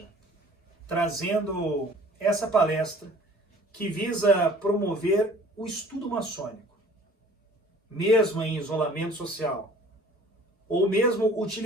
trazendo essa palestra que visa promover o estudo maçônico, mesmo em isolamento social, ou mesmo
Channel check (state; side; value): normal; both; correlation 0.50